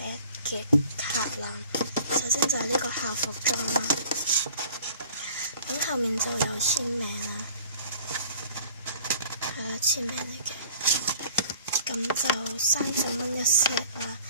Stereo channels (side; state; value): both; inverted; correlation -0.50